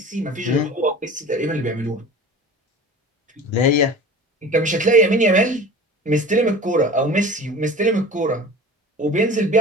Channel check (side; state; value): both; normal; correlation 0.38